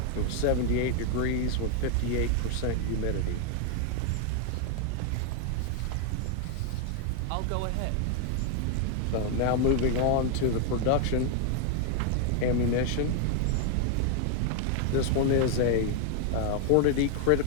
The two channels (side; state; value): both; different; correlation 0.00